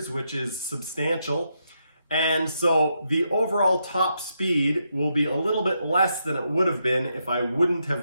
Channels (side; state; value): both; inverted; correlation -0.81